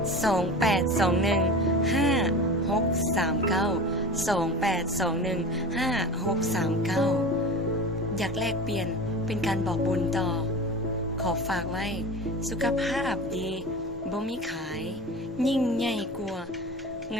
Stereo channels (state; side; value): normal; both; correlation 0.33